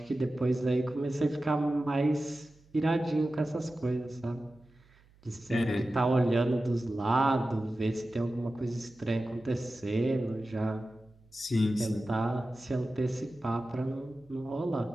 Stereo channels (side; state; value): right; noise; hum, 29 dB below the sound